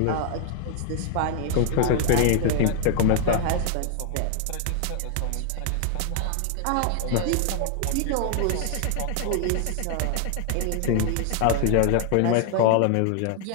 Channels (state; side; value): different; both; correlation 0.00